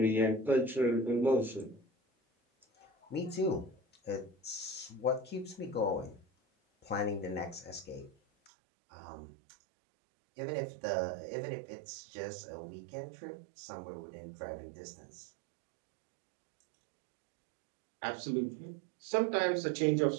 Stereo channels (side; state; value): left; drops out; at 8.5 s